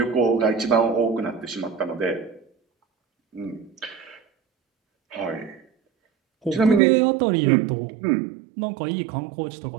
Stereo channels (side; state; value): left; drops out; at 6.8 s